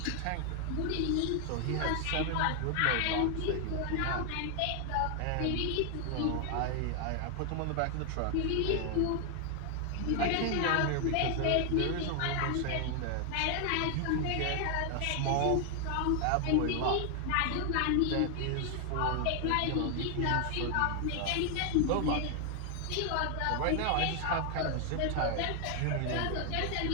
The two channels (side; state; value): both; different; correlation 0.00